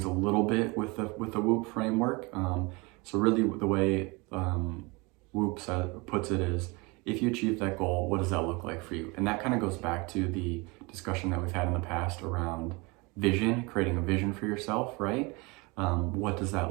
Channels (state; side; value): quieter; left; 26.7 dB